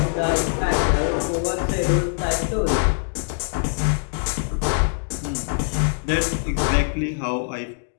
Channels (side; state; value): right; silent; digital silence